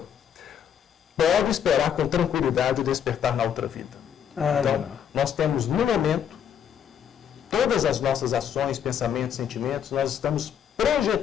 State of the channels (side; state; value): right; quieter; 8.6 dB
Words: Pode esperar com tranquilidade o despertar na outra vida. Então, nós temos no momento, todas as nossas ações, pensamentos, sentimentos, nós estamos